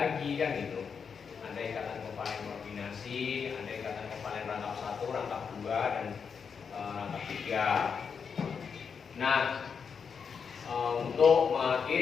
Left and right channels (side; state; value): right; quieter; 6.2 dB